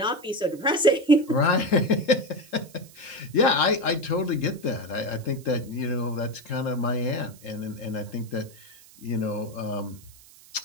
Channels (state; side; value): noise; right; hiss, 23 dB below the sound